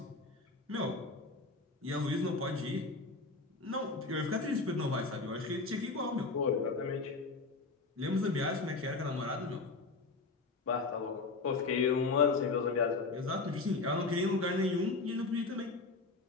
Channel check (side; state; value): right; quieter; 3.8 dB